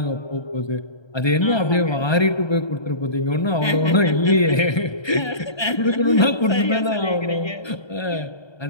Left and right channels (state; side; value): late; right; 1.3 ms